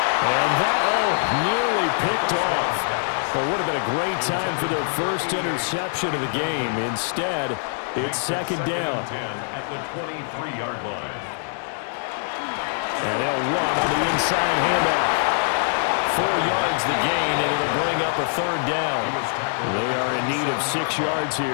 And that, nearly picked off. It would have been a great time for their first interception of the game. Instead, it's 2nd down. 10 at the 23-yard line. And they'll run on the inside handoff. 4 yards the gain, and it'll bring up a 3rd down. They are in need of 6 yards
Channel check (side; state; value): right; silent; digital silence